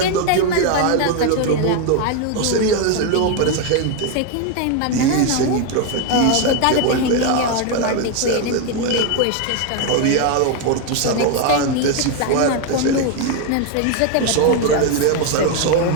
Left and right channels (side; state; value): both; different; correlation 0.01